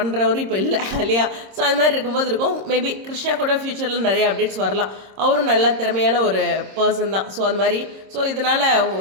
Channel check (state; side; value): late; left; 26 ms